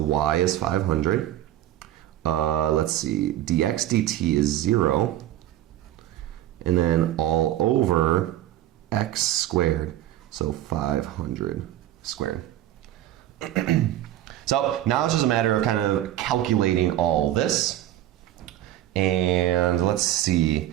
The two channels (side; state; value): left; quieter; 13.1 dB